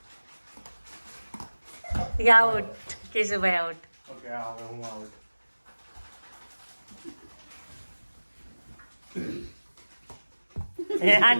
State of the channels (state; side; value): inverted; both; correlation -1.00